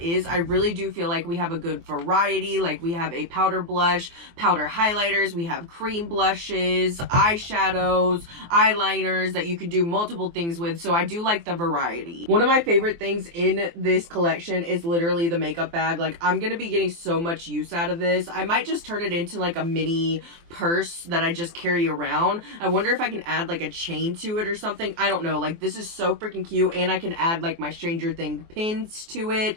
is, I really do feel like we have a good variety. Like we have a powder blush, powder highlighters, we have cream blushes, eyeshadows, eyeliners that you can do multiple things with. So I do like the variety. One of my favorite things in this collection is literally the makeup bag. Like I'm gonna be getting so much use out of this. I might just turn it into like a mini purse that I just carry around. I wonder if I can add like a chain to it or something. I don't know. Like this is so freaking cute, and I can add like my Stranger Things pins to it.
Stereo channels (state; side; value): late; left; 24 ms